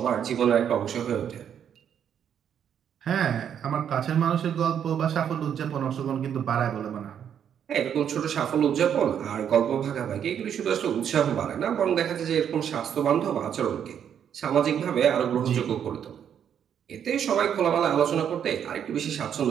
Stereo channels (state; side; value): quieter; left; 8.7 dB